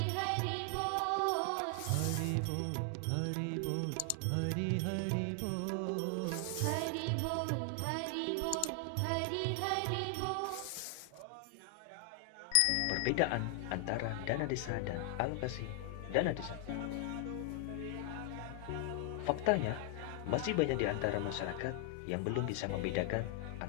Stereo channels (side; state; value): both; different; correlation 0.00